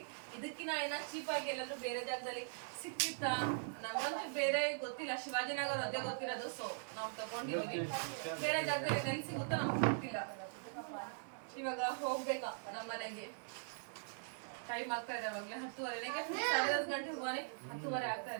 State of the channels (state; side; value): silent; left; digital silence